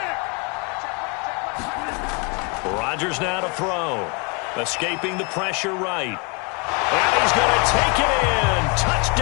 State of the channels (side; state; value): right; quieter; 32.4 dB